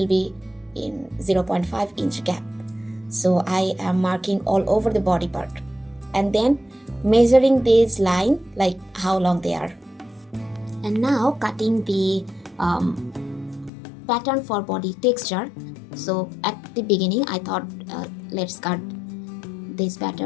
be in 0.5 inch gap. So I am marking all over the body part and then measuring this line like how long they are. And now cutting the pattern for body texture. So at the beginning I thought let's cut this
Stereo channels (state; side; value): drops out; right; at 13.7 s